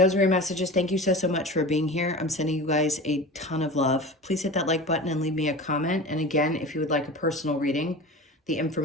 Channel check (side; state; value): both; normal; correlation 0.34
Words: are your messages. Thank you so much for being here. I'm sending you guys a ton of love. Please hit that like button and leave me a comment. And again, if you would like a personal reading, the